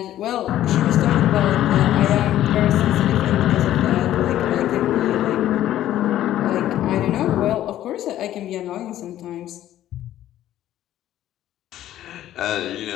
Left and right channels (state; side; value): quieter; right; 12.8 dB